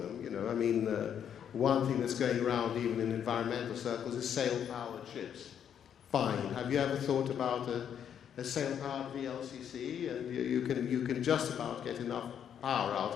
You know, I mean, one thing that's going around even in environmental circles is sail-powered ships. Fine. Have you ever thought about a sail-powered VLCC? And you can just about get enough power out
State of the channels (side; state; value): right; quieter; 8.8 dB